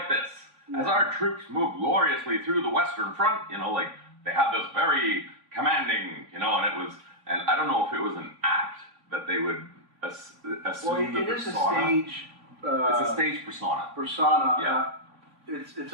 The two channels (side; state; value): left; late; 3.4 ms